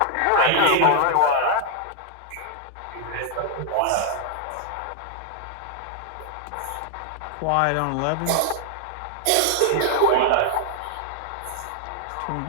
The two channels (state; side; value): different; both; correlation 0.00